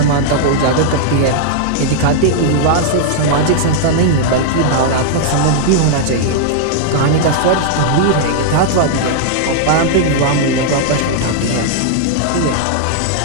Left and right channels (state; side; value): different; both; correlation -0.01